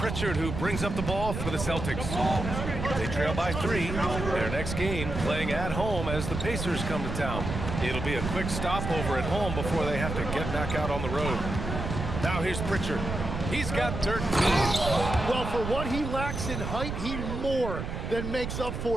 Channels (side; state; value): right; noise; rumble, 5 dB below the sound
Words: who brings up the ball for the Celtics. They trail by 3. Their next game playing at home as the Pacers come to town. It'll be a quick stopover at home before they have to get back out on the road. Now here's Pritchard. He's got 13. Well, for what he lacks in height, he more than makes up